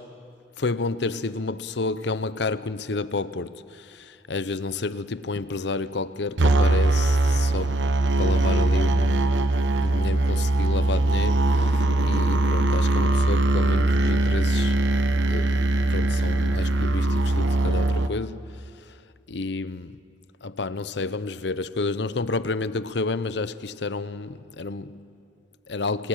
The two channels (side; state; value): both; normal; correlation 0.69